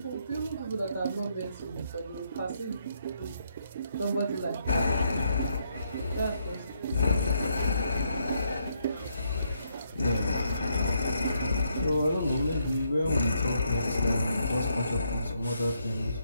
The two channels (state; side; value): inverted; both; correlation -0.75